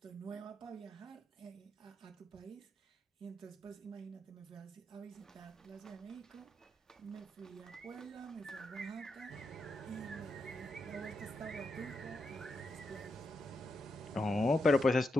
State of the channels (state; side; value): normal; both; correlation 0.84